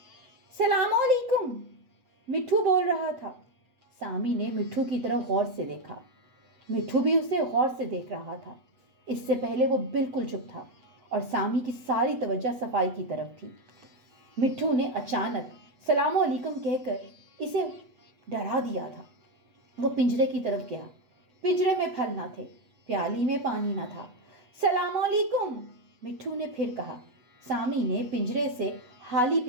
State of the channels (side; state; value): left; late; 8.0 ms